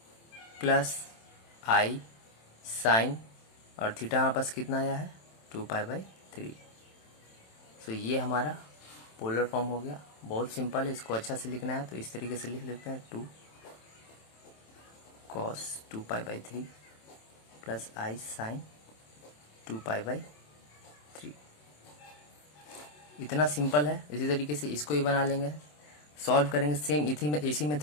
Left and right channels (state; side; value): late; right; 27 ms